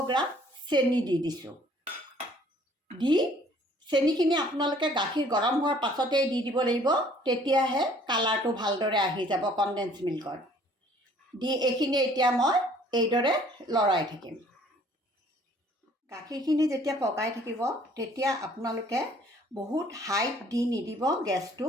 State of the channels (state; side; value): normal; both; correlation 0.57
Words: গ্ৰাম চেনি দি দিছোঁ। চেনিখিনি আপোনালোকে গাখীৰ গৰম হোৱাৰ পাছতেই দি দিব লাগিব, তেতিয়াহে কালাৰটো ভালদৰে আহি যাব কনডেন্স মিল্কৰ। এইখিনি এতিয়া মই এইদৰে লৰাই থাকিম। গাখীৰখিনি যেতিয়া পগাই থাকিব তেতিয়া আপোনালোকে বহুত হাইত দি নিদিব, গেছটো